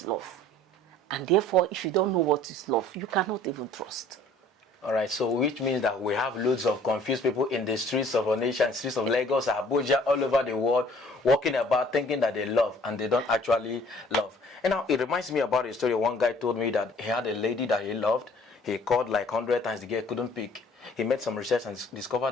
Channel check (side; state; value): both; normal; correlation 0.55